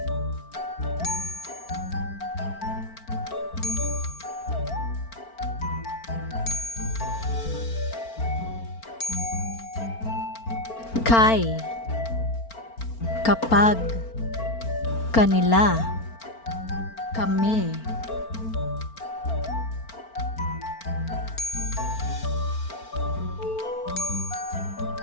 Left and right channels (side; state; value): right; late; 4.4 ms